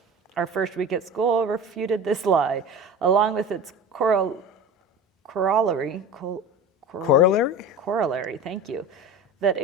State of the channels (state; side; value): normal; both; correlation 0.33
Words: Our first week at school refuted this lie, along with its corollary, thank you, that